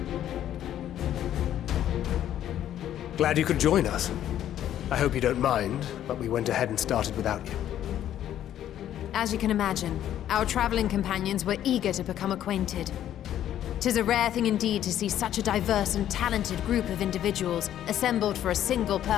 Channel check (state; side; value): quieter; right; 11.3 dB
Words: Glad you could join us. I hope you don't mind, but we went ahead and started without you. As you can imagine, our traveling companions were eager to become acquainted. 'Tis a rare thing indeed to see such a diverse and talented group of individuals assembled for a single